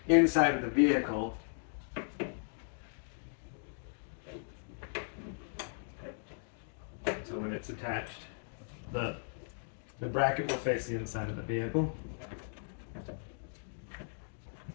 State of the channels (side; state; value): right; silent; digital silence